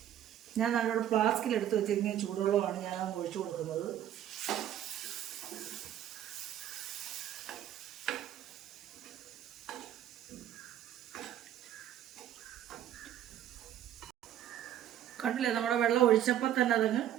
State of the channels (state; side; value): quieter; left; 11.2 dB